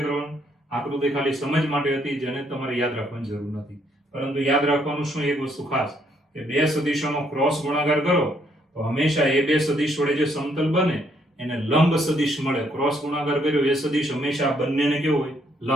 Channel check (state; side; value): normal; both; correlation 0.70